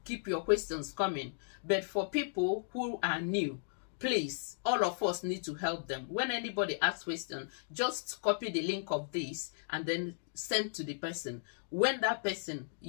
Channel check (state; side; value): silent; right; digital silence